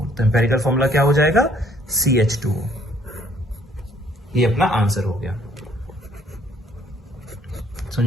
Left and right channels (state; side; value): normal; both; correlation 0.63